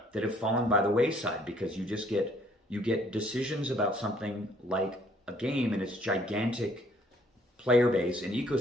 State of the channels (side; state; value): both; normal; correlation 0.62